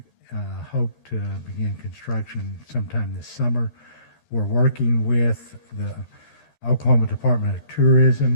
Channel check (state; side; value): late; right; 11 ms